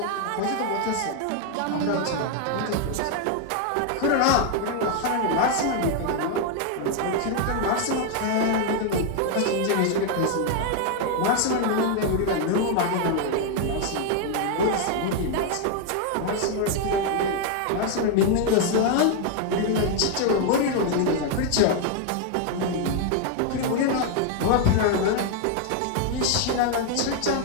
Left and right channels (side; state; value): both; different; correlation 0.00